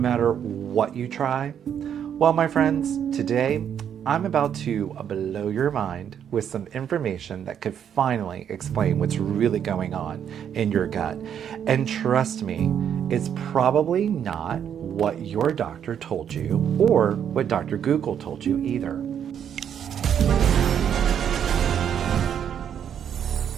what you try. Well, my friends, today I'm about to blow your mind with some information that could finally explain what's really going on in your gut. And trust me, it's probably not what your doctor told you or what Dr. Google told you either.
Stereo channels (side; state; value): left; quieter; 8.8 dB